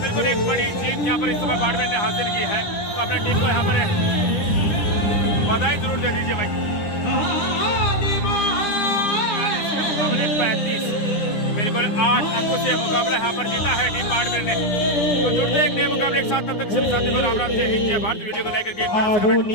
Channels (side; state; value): right; late; 9.9 ms